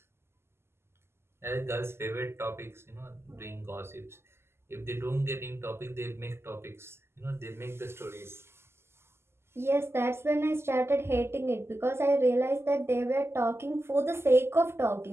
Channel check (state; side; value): late; left; 0.12 ms